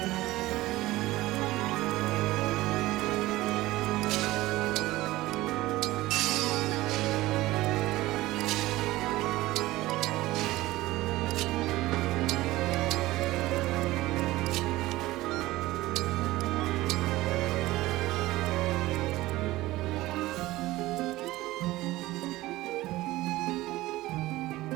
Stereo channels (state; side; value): quieter; left; 17.8 dB